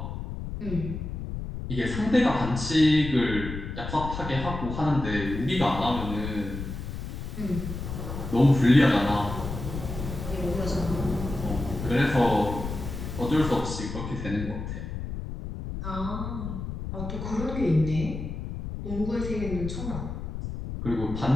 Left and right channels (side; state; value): left; noise; rumble, 6 dB below the sound